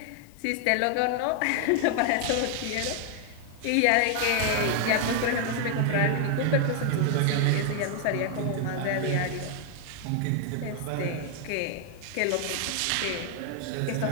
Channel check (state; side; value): different; both; correlation 0.00